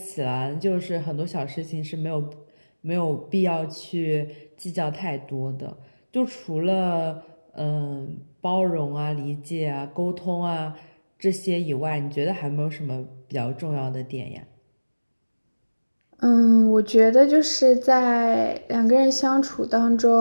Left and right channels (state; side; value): inverted; both; correlation -1.00